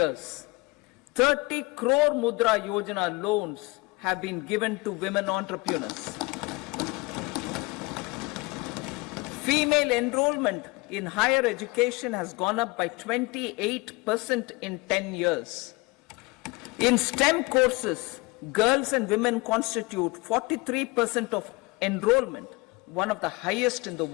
30 crore Mudra Yojana loans have been given to women entrepreneurs. Female enrollment in higher education has gone up by 28% in 10 years. In STEM courses, girls and women constitute 43% of enrollment, one of the highest in the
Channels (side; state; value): right; quieter; 25.2 dB